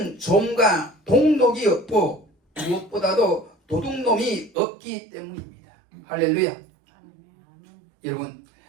좀과 동록이 없고 무엇보다도 도둑놈이 없기 때문입니다. 할렐루야. 여러분,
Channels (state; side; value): drops out; left; at 4.5 s